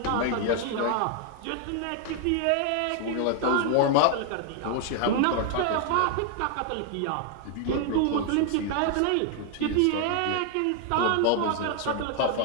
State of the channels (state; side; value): different; both; correlation 0.00